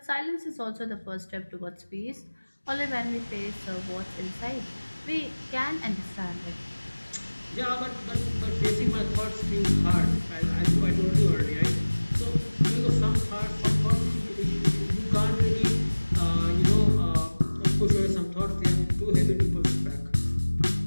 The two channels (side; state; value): both; inverted; correlation -1.00